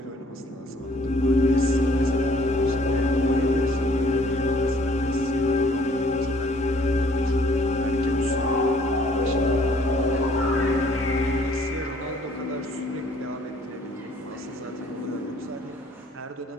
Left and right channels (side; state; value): both; normal; correlation 0.60